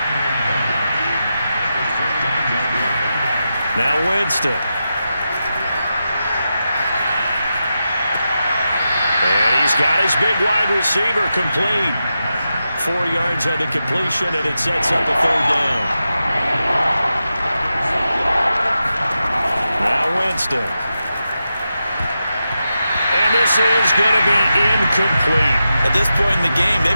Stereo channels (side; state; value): both; inverted; correlation -0.89